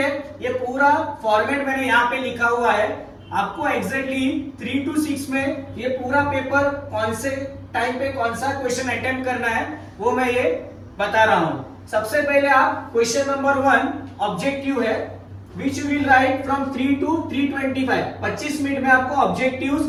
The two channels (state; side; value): identical; both; correlation 1.00